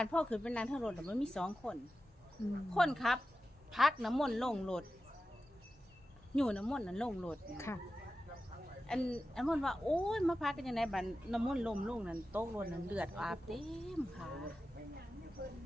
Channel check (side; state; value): both; normal; correlation 0.93